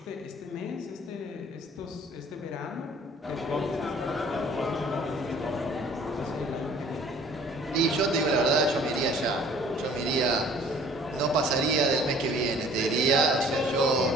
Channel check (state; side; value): normal; both; correlation 0.52